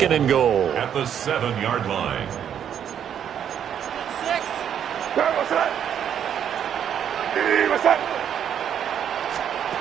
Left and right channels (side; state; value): left; quieter; 9.0 dB